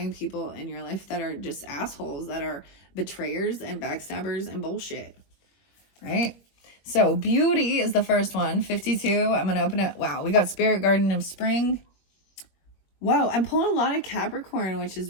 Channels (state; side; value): late; right; 21 ms